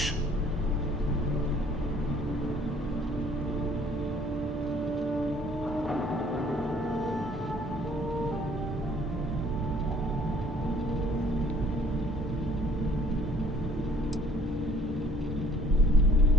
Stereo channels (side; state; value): both; normal; correlation 0.58